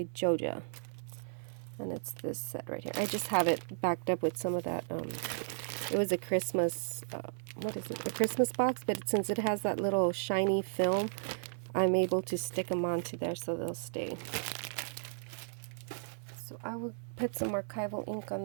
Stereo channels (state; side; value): silent; left; digital silence